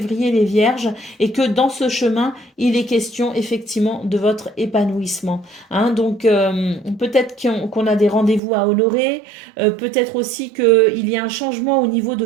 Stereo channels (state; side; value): drops out; left; at 8.4 s